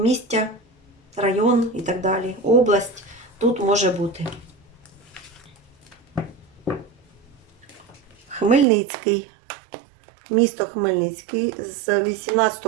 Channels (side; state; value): left; drops out; at 8.7 s